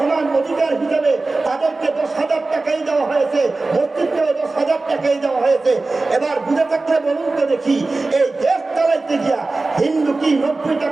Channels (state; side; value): quieter; left; 3.4 dB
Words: অধিকার হিসাবে তাদেরকে 10,000 টাকাই দেওয়া হয়েছে, মসজিদকেও 10,000 টাকাই দেওয়া হয়েছে। এবার বুঝে থাকলে বলুন তো দেখি, এই দেশ চালাইতে গিয়া হিন্দু কি 90